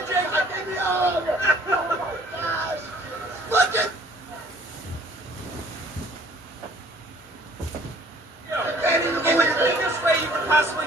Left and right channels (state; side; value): normal; both; correlation 0.55